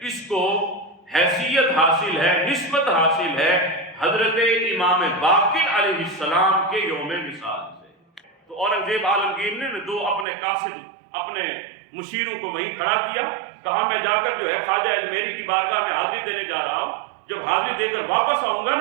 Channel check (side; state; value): left; drops out; at 10.2 s